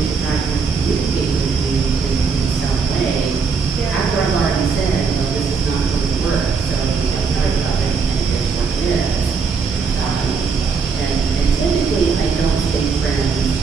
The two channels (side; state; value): left; quieter; 5.2 dB